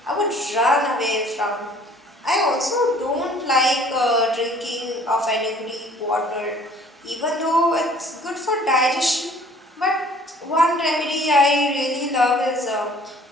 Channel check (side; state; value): both; normal; correlation 0.54